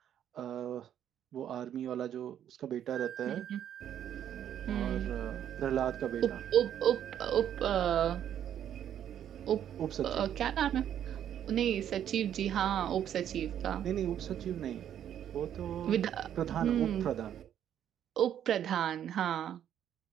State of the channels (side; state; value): left; quieter; 10.1 dB